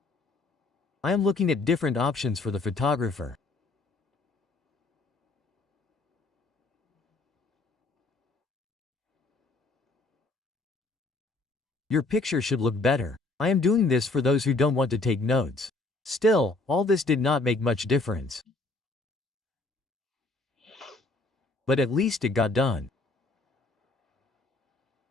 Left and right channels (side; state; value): right; quieter; 3.3 dB